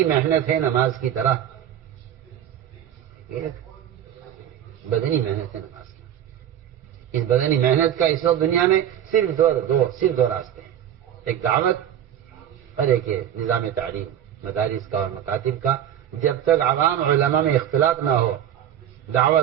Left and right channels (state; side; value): quieter; left; 10.4 dB